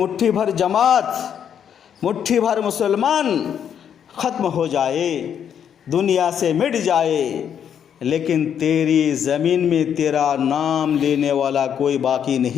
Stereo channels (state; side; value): quieter; right; 8.6 dB